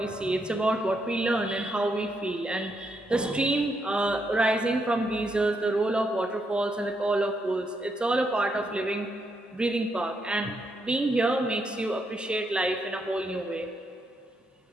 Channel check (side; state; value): both; normal; correlation 0.79